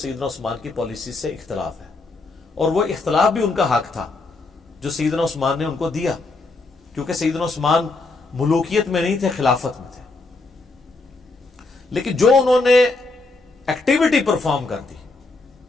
عثمان کی پالیسی سے اختلاف ہے، اور وہ اختلاف بھی ان کا حق تھا جو سیدنا عثمان نے ان کو دیا، کیونکہ سیدنا عثمان ملوکیت میں نہیں تھے، خلافت میں تھے۔ لیکن جو انہوں نے ایکٹیویٹی پرفارم کر دی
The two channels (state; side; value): quieter; right; 3.4 dB